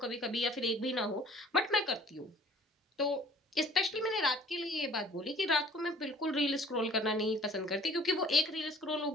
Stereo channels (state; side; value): normal; both; correlation 0.51